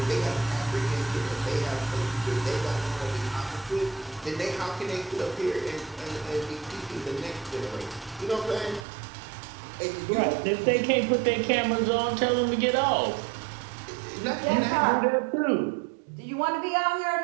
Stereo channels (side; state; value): left; drops out; at 8.8 s